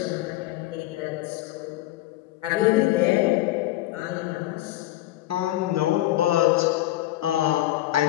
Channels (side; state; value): right; quieter; 16.0 dB